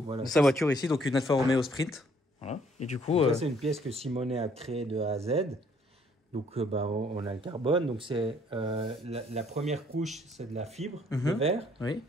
Voilà. Sa voiture ici, donc une Alfa Romeo Sprint. Voilà. Et du coup. Ça, c'est une pièce que Simonet a créée de A à Z. Donc, on a le carbone. Donc, c'est la première couche, c'est de la fibre de verre. Oui.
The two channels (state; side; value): normal; both; correlation 0.63